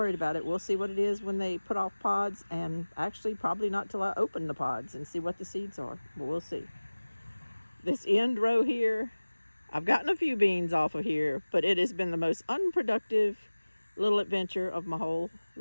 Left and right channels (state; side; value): inverted; both; correlation -1.00